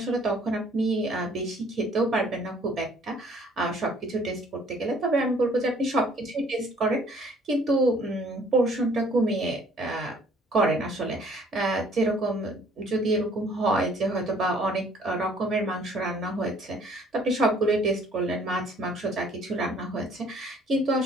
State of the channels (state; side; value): normal; both; correlation 0.58